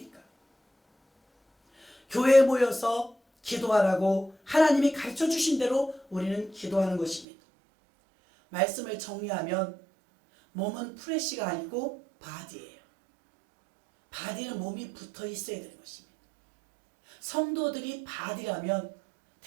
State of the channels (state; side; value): drops out; left; at 7.2 s